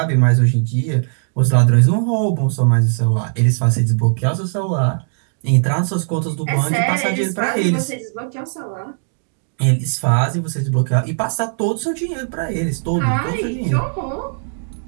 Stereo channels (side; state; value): left; silent; digital silence